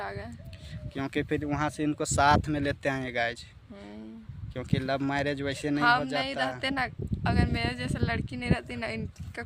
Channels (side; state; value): both; identical; correlation 1.00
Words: आ गए, क्योंकि फिर वहाँ से इनको साथ में लेते आए गाइज, क्योंकि लव मैरिज वैसे नहीं हो जाता। नहीं रहते ना, अगर मेरे जैसे लड़की नहीं रहती ना, इनका